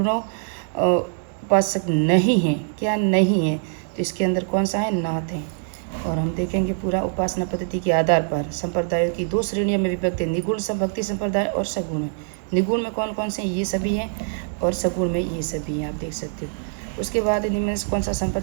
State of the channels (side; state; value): left; silent; digital silence